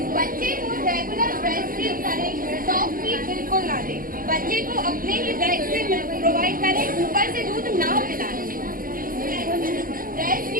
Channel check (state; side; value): late; left; 0.41 ms